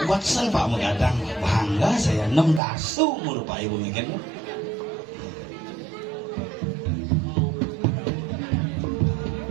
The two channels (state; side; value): drops out; left; at 2.6 s